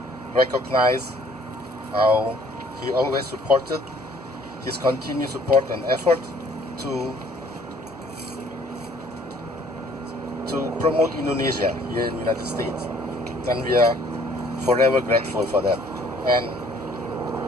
recognize how he always supported, his continued support and effort to promote Indonesia here in the United States, and we are forever grateful for that. And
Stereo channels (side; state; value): both; normal; correlation 0.58